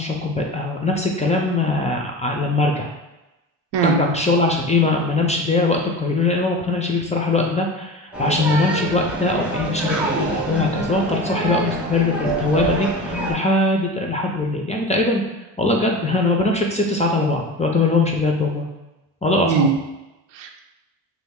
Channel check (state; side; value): normal; both; correlation 0.32